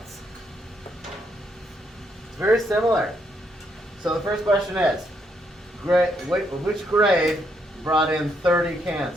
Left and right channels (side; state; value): both; normal; correlation 0.75